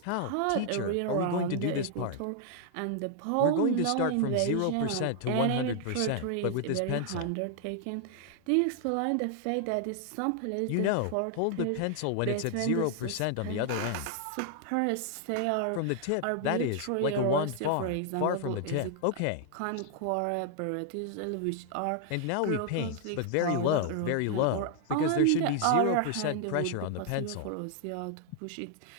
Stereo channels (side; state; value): both; different; correlation 0.00